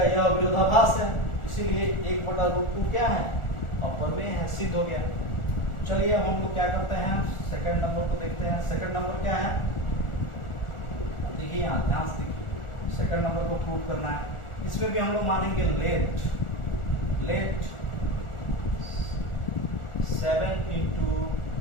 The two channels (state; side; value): late; right; 1.4 ms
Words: यह विरोधाभास है, इसीलिए 1/√2 क्या है, अपर में है, सिद्ध हो गया। चलिए अब हम लोग क्या करते हैं, सेकंड नंबर को देखते हैं। सेकंड नंबर क्या है, देखिए यहाँ ध्यान से देखिए, सेकंड नंबर को प्रूव करना है। इसमें भी हम लोग मानेंगे लेट 7 ×